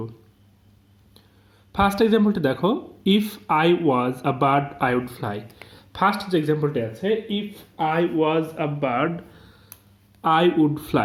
ফার্স্ট এক্সাম্পলটি দেখো, if I was a bird I would fly. First যে এক্সাম্পলটি আছে, if I was a bird I would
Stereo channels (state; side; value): identical; both; correlation 1.00